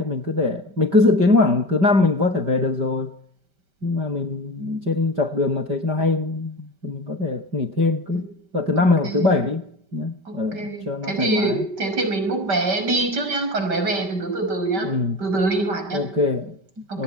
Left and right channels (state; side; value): late; left; 5.1 ms